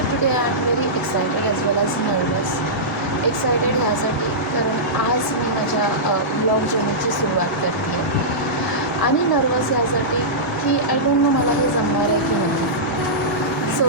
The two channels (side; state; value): both; normal; correlation -0.15